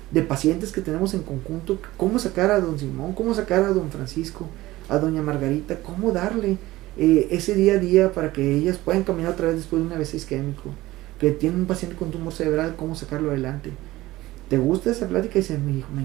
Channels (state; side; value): quieter; left; 17.6 dB